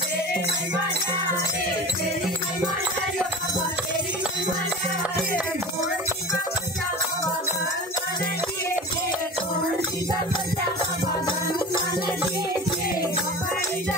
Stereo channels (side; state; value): both; normal; correlation 0.33